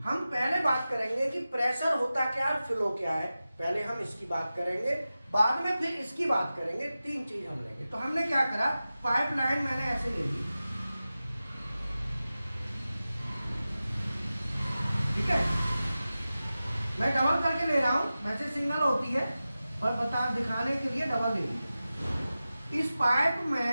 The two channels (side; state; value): both; inverted; correlation -0.95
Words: हम पहले बात करेंगे कि प्रेशर होता क्या है, फ्लो क्या है, पहले हम इसकी बात करेंगे, बाद में फिर इसकी बात करेंगे, तीन चीज हम लेंगे। तो हमने क्या करा, पाइपलाइन मैंने ऐसे ले ली, ठीक है, मैं डबल करके ले रहा हूं, वैसे सिंगल होती है पर बता दिखाने के लिए डबल ले ली। इस पाइप